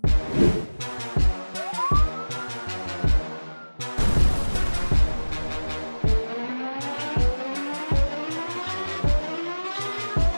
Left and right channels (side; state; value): both; inverted; correlation -1.00